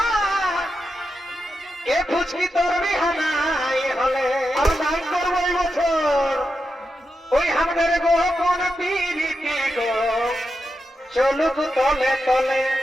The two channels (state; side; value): normal; both; correlation 0.87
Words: এ ফুচকি তোর বিহানাই হলে আর নাই করবো এই বছর ওই আমাদের গোপন পিরিতি গো চলুক তলে তলে